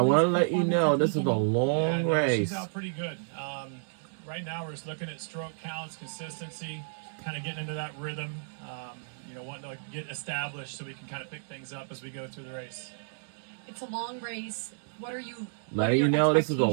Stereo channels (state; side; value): silent; left; digital silence